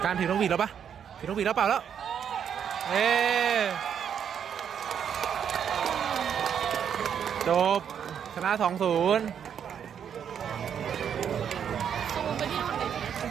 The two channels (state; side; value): quieter; left; 8.3 dB